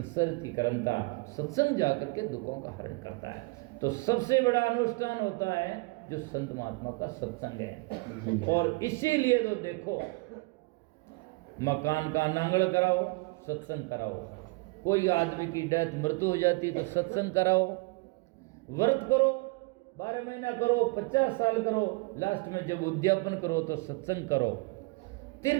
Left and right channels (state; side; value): quieter; left; 27.2 dB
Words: की करंता, सत्संग जाकर के दुखों का हरण करता है। तो सबसे बड़ा अनुष्ठान होता है जो संत महात्मा का सत्संग है। और इसीलिए तो देखो, मकान का नांगड़ कराओ, सत्संग कराओ। कोई आदमी की डेथ मृत्यु हो जाती तो सत्संग कराओ। व्रत करो, 12 महीना करो, 50 साल करो, लास्ट में जब उद्यापन करो तो सत्संग करो।